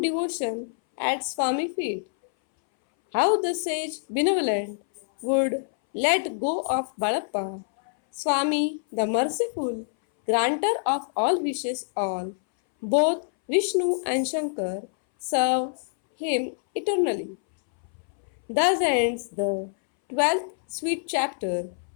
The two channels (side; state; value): right; silent; 61 dB below the other